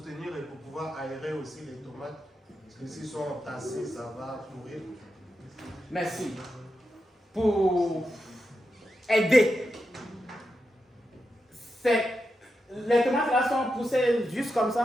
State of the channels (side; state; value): both; normal; correlation 0.87